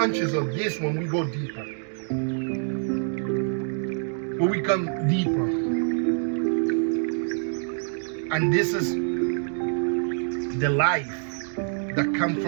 of this when we go deeper. When we come deeper. And this is the life that comes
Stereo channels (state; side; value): silent; left; digital silence